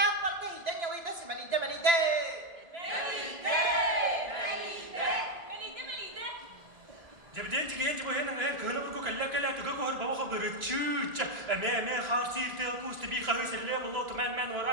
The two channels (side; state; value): left; late; 1.8 ms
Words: neyden yalıydı simelide melide. Jabden jigen jibo hen hen kana bu kalla kalla to ko har bawa khabar chuch me kharsir te ku stibi khawi selle bollo to men